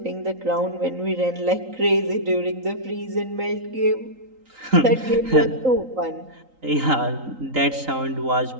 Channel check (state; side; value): late; left; 3.8 ms